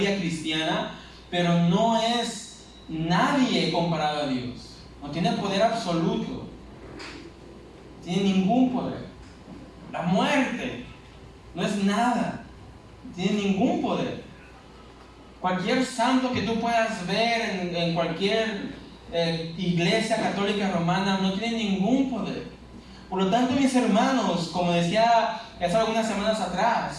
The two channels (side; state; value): both; identical; correlation 1.00